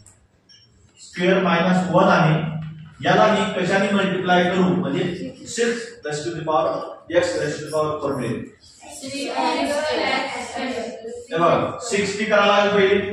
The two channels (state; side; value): identical; both; correlation 1.00